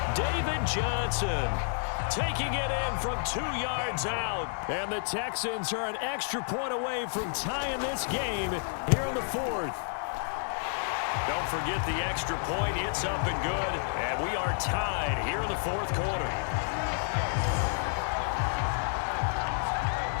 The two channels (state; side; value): silent; right; digital silence